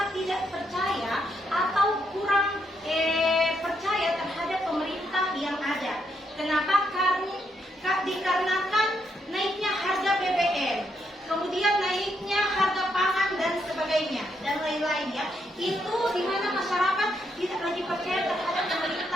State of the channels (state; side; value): normal; both; correlation 0.78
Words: tidak percaya atau kurang percaya terhadap pemerintah yang ada. Kenapa? Karena dikarenakan naiknya harga BBM, kemudian naiknya harga pangan dan sebagainya dan lain-lainnya. Itu di mana masyarakat tidak lagi percaya terhadap